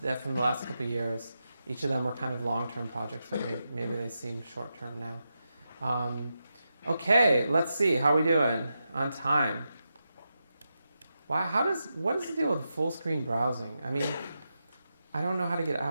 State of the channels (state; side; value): inverted; both; correlation -0.88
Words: that from the last couple of years. Each of them were kind of long-term projects, but maybe they seem short-term now. Okay, let's see. How are we doing on time? Wow, what is the deal with full screen browsing? I mean, I don't know how to get